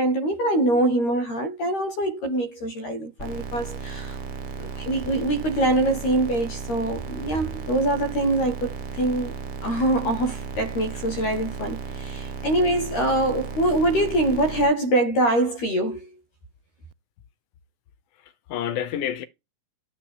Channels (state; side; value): late; right; 13 ms